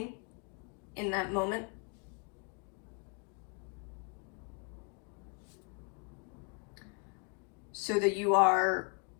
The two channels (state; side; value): quieter; right; 36.3 dB